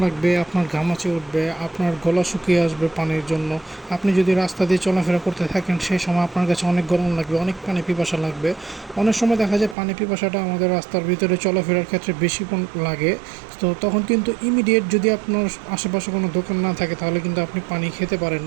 লাগবে, আপনার ঘামাচি উঠবে, আপনার গলা শুকিয়ে আসবে পানির জন্য। আপনি যদি রাস্তা দিয়ে চলাফেরা করতে থাকেন সেই সময় আপনার কাছে অনেক গরম লাগবে, অনেক পানি পিপাসা লাগবে। অনেক সময় দেখা যায় পানি পিপাসাটা আমাদের রাস্তার ভিতরে চলাফেরার ক্ষেত্রে বেশি লাগে। তো তখন কিন্তু ইমিডিয়েট যদি আপনার আশেপাশে কোনো দোকান না থাকে তাহলে কিন্তু আপনি পানি খেতে পারেন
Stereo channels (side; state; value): left; drops out; at 9.8 s